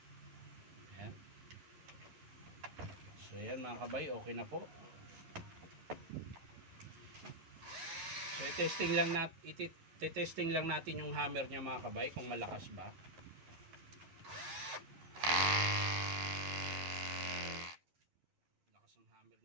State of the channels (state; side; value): late; left; 11 ms